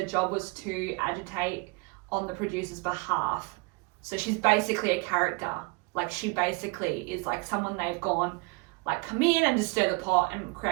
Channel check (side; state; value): left; quieter; 27.5 dB